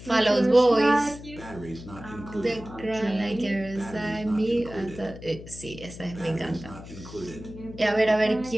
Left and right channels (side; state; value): left; noise; hum, 15 dB below the sound